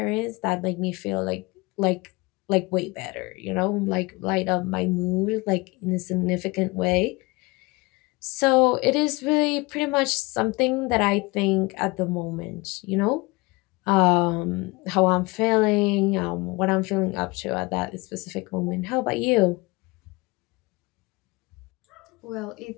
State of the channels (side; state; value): right; quieter; 24.7 dB